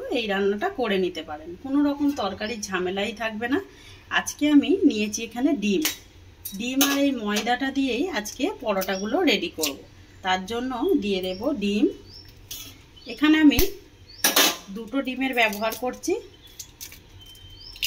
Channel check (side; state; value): both; identical; correlation 1.00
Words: এই রান্নাটা করে নিতে পারেন, কোনো রকম তরকারির ঝামেলাই থাকবে না। আজকে আমি নিয়েছি এখানে ডিম আর এই ময়দাটা দিয়েই আজকে পরোটাগুলো রেডি করব। তার জন্য দিয়ে দেব ডিম। এখানে আমি দুটো ডিমের ব্যবহার করছি।